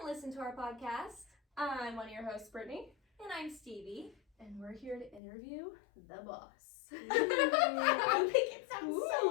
listen to our podcast. I'm one of your hosts, Brittany. And I'm Stevie. And we're here to interview the boss. I think it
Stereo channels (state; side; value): drops out; right; at 5.2 s